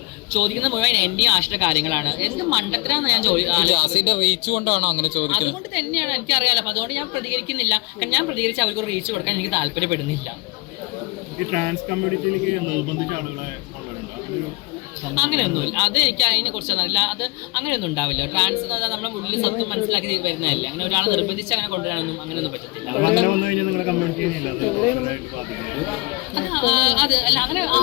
ചോദിക്കുന്ന മുഴുവൻ എന്റെയും ആശ്രിത കാര്യങ്ങളാണ്. എന്ത് മണ്ടത്തിനാന്ന് ഞാൻ അതുകൊണ്ട് തന്നെയാണ് എനിക്കറിയാലോ. അപ്പൊ അതുകൊണ്ട് ഞാൻ പ്രതികരിക്കുന്നില്ല. കാരണം ഞാൻ പ്രതികരിച്ച് അവർക്ക് റീച്ച് കൊടുക്കാൻ എനിക്ക് താല്പര്യപ്പെടുന്നില്ല. ഈ ട്രാൻസ് കമ്മ്യൂണിറ്റിയിലേക്ക് നിർബന്ധിച്ച ആളുകളെ അങ്ങനെയൊന്നുമില്ല. അത് എനിക്ക് അതിനെ കുറിച്ചൊന്നും അറിയില്ല. അത് അങ്ങനെയൊന്നും ഉണ്ടാവില്ല. ട്രാൻസ് എന്ന് പറഞ്ഞാൽ നമ്മുടെ ഉള്ളിൽ സത്യം മനസ്സിലാക്കി വരുന്നതല്ല. അങ്ങനെ ഒരാളെ നിർബന്ധിച്ച് അങ്ങനെ കൊണ്ടുവരാനൊന്നും അങ്ങനെയൊന്നും പറ്റത്തില്ല. അത് അല്ല, അങ്ങനെ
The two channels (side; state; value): right; quieter; 25.8 dB